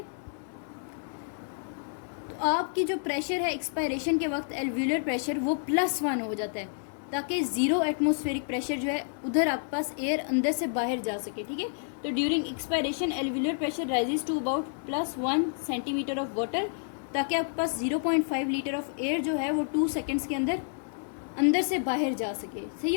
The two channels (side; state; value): right; silent; digital silence